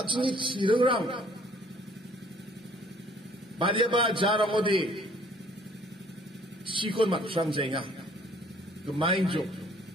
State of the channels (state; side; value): normal; both; correlation 0.58